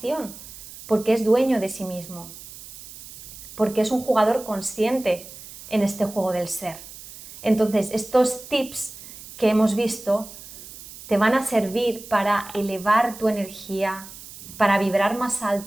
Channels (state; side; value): noise; right; hiss, 16 dB below the sound